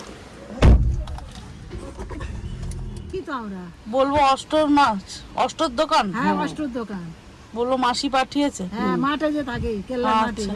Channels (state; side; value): identical; both; correlation 1.00